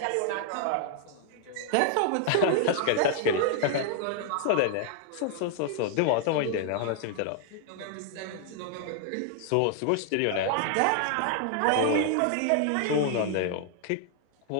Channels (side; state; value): both; different; correlation 0.00